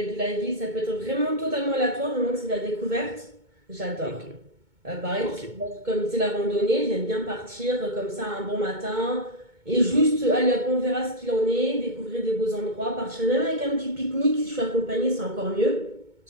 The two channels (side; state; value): left; late; 2.2 ms